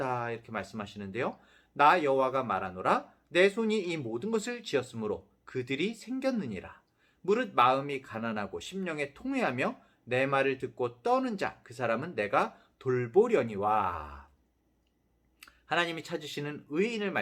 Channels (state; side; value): identical; both; correlation 1.00